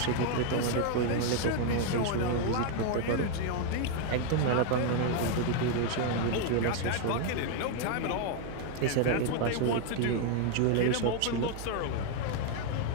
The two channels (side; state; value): both; different; correlation 0.01